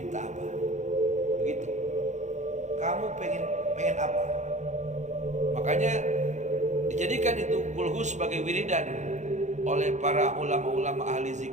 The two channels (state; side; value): late; left; 0.34 ms